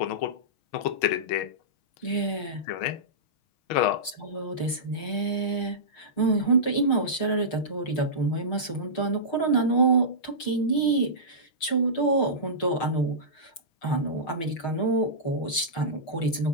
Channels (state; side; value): late; right; 6.3 ms